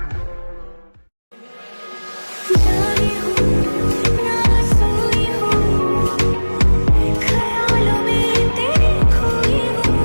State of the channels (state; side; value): inverted; both; correlation -1.00